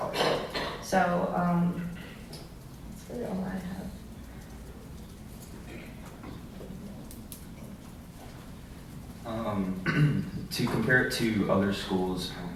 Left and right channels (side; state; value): both; identical; correlation 1.00